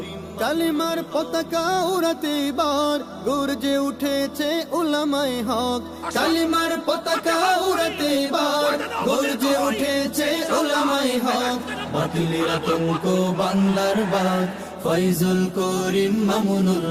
কালিমার পতাকা উড়াতে এবার গর্জে উঠেছে উলামায়ে হক। কালিমার পতাকা উড়াতে এবার গর্জে উঠেছে উলামায়ে হক। বাতিলের আতঙ্ক বাংলার বাগ ফয়জুল করিম মামুনুল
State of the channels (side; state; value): both; identical; correlation 1.00